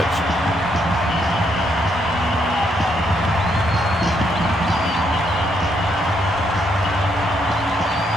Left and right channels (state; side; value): normal; both; correlation 0.75